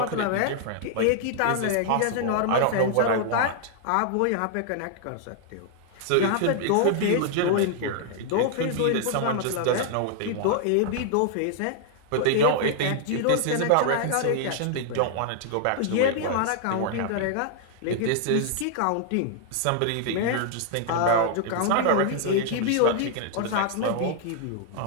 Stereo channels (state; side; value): different; both; correlation -0.01